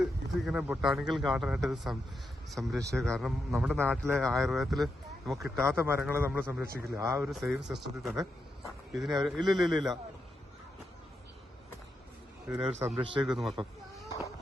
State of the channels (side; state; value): both; normal; correlation 0.85